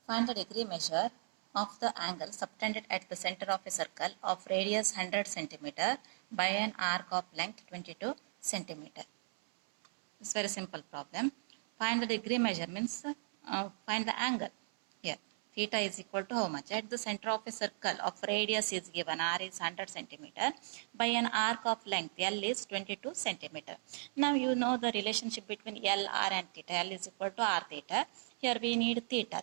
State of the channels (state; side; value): silent; left; 53 dB below the other